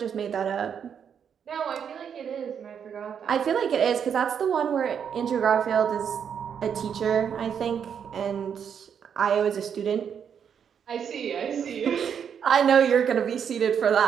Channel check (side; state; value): left; quieter; 7.7 dB